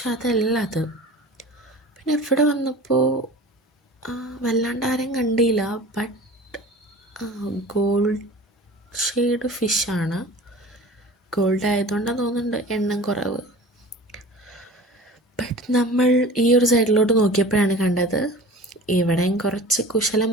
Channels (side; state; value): both; normal; correlation 0.39